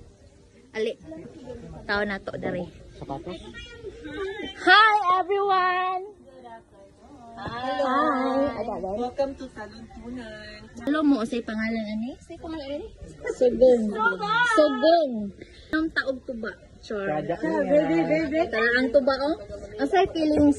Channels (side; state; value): both; identical; correlation 1.00